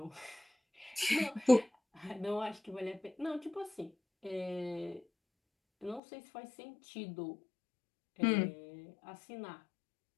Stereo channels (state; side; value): drops out; right; at 6.0 s